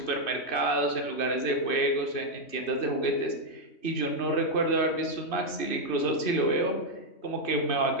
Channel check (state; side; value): late; right; 2.6 ms